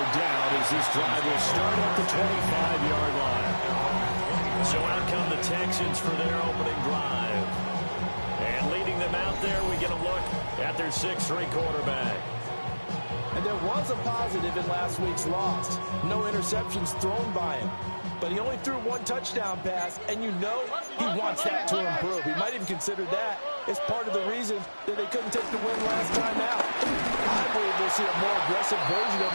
down as this drive will start at the 25-yard line. So out come the Texans for their opening drive. And leading them out there, we get a look at their 6'3" quarterback. And there was a positive in last week's loss. No interceptions thrown by him. But he only threw one touchdown pass, and you know he wants that to improve. He might even consider that as part of the reason that they couldn't take the win last time out. I believe we'll see a more aggressive version of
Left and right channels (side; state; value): both; inverted; correlation -1.00